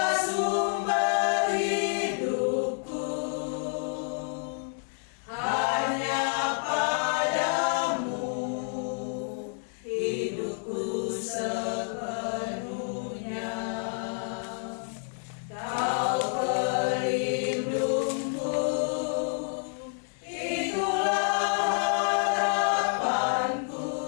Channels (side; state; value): right; silent; 59 dB below the other